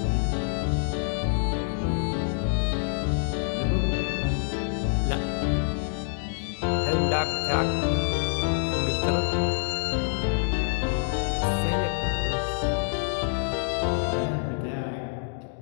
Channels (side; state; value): right; silent; 60 dB below the other